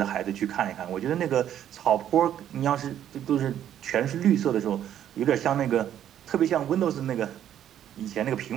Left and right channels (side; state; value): left; quieter; 10.6 dB